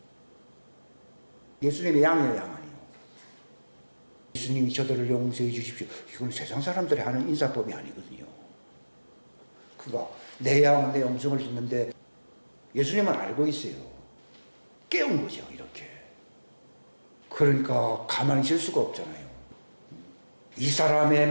예수님의 양이에요, 양 아니에요. 예수님이 저들을 용서해 주십시오. 이건 세상 사람들이 하는 인사법이 아니거든요. 그거 내 양은 내 음성을 듣는데 예수님은 알고 있어요. 깨운 거죠, 이렇게. 그러니까 가만히 있을 수가 없잖아요. 이 사람의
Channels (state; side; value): inverted; both; correlation -1.00